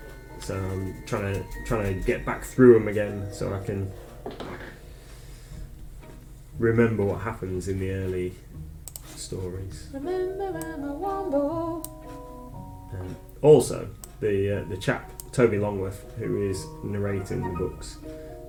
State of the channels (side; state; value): both; identical; correlation 1.00